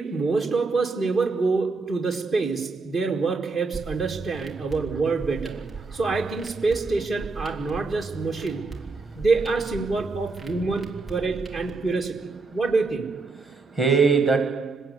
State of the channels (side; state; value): left; quieter; 4.0 dB